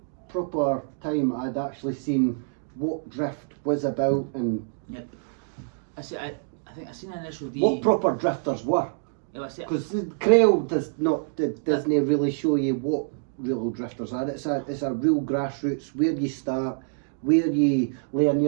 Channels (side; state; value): left; silent; digital silence